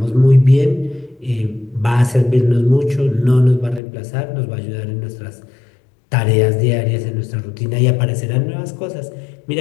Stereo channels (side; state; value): right; drops out; at 3.8 s